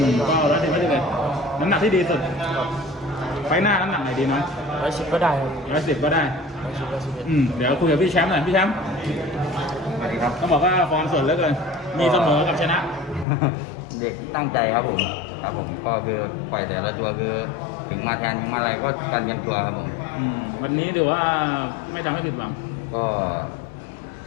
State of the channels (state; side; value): drops out; right; at 13.2 s